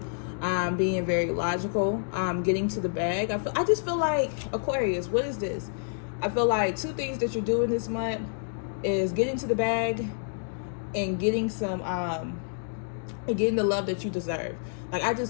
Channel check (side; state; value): right; silent; digital silence